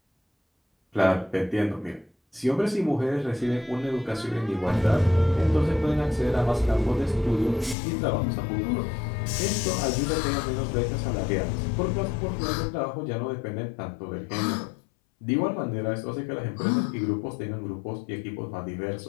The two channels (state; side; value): drops out; right; at 7.8 s